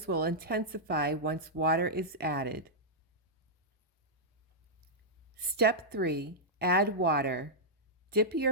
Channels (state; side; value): normal; both; correlation -0.10